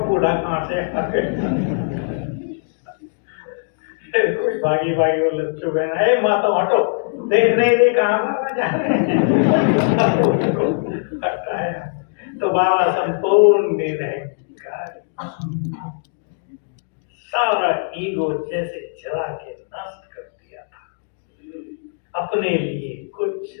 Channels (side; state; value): right; silent; digital silence